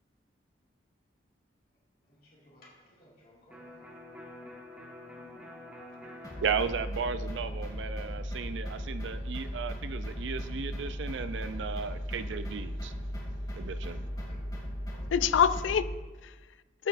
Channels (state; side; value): normal; both; correlation 0.16